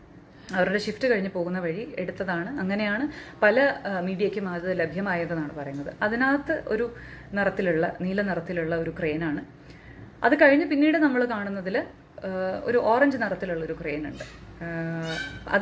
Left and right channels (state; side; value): identical; both; correlation 1.00